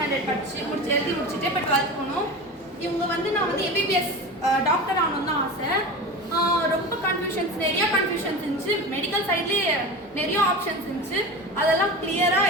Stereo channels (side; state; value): both; normal; correlation 0.29